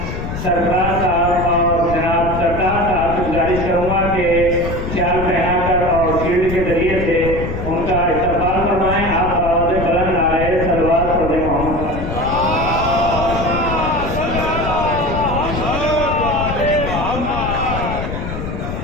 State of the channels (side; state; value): left; noise; rumble, 5 dB below the sound